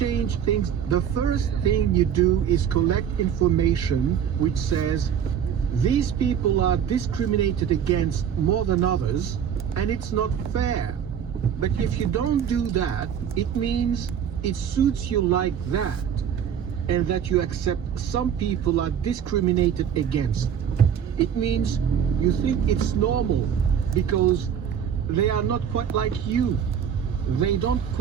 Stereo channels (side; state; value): left; quieter; 8.5 dB